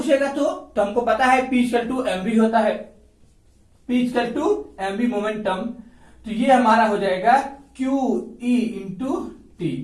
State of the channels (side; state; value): both; identical; correlation 1.00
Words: तो हमको पता है p इक्वल टू mv होता है, p equal to mv momentum. तो ये हमारा हो जाएगा QE इंटू टी,